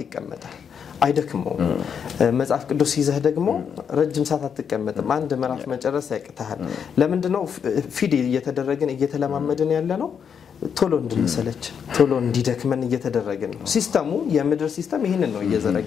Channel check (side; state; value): right; quieter; 7.3 dB